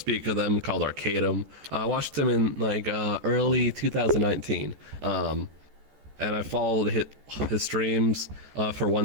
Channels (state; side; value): late; left; 14 ms